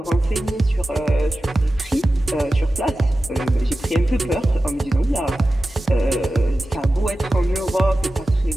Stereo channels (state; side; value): normal; both; correlation 0.94